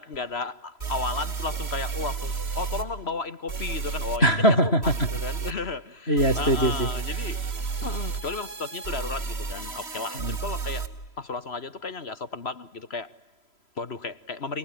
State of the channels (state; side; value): late; right; 3.0 ms